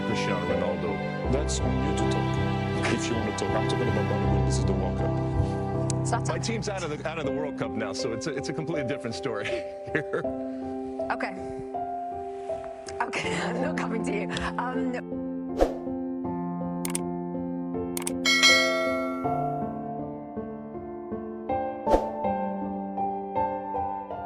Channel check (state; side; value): identical; both; correlation 1.00